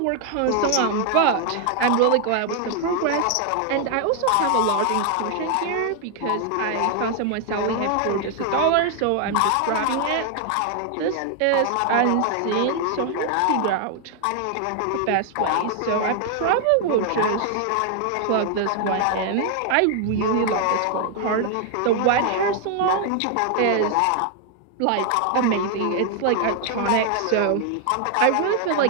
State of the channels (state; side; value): different; both; correlation 0.00